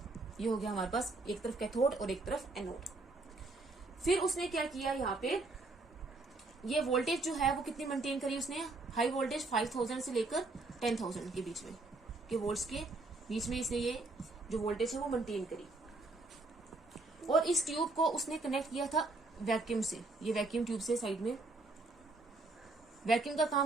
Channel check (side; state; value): left; quieter; 3.2 dB